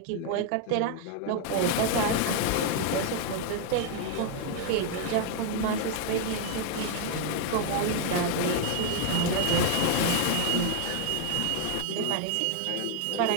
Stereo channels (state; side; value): different; both; correlation 0.00